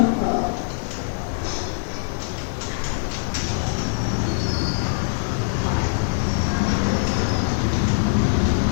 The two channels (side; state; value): right; silent; 63 dB below the other